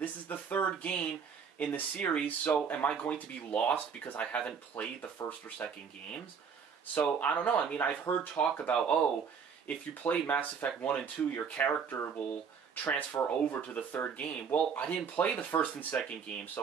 is the third game in the series, so am I going to be lost because I haven't played the first or second games? So, I don't know. I mean, I've heard talk about, oh, if you play Mass Effect 1 and 2, your character will transfer over to the third game. Well, I didn't play the first and second game,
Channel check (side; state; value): left; quieter; 6.5 dB